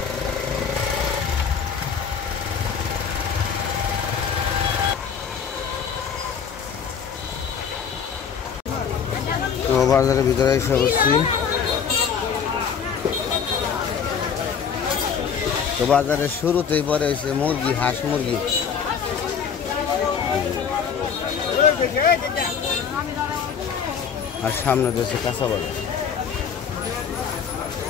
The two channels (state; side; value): quieter; right; 6.9 dB